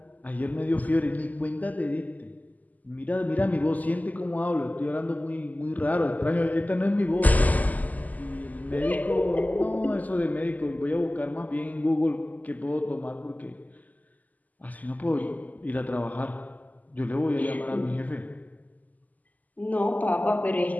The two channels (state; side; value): late; right; 0.079 ms